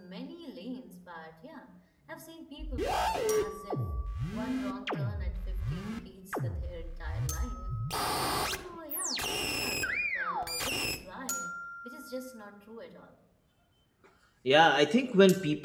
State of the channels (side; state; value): both; identical; correlation 1.00